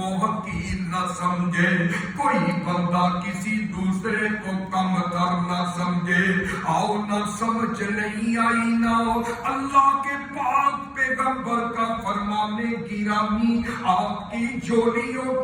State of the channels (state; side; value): identical; both; correlation 1.00